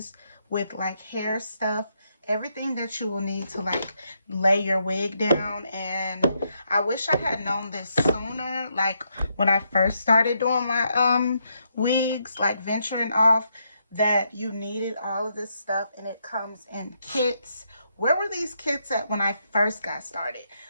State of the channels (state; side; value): inverted; both; correlation -0.78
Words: with like hair stuff, everything that you will need to like lay your wig down. And I wish I had known this sooner, like when I first started doing my wigs, like venturing off, that you needed all of this stuff, and it comes in kits. Where were these kits at when I first got started?